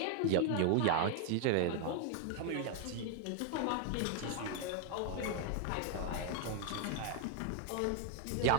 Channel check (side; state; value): both; different; correlation 0.00